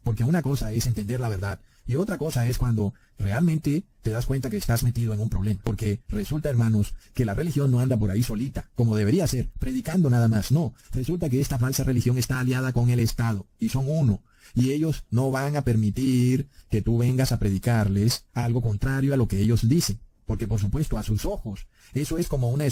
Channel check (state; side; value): identical; both; correlation 1.00